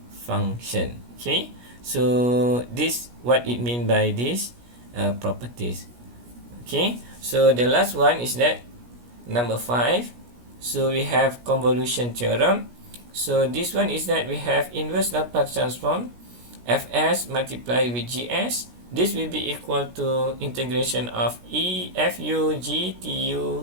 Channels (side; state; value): left; late; 17 ms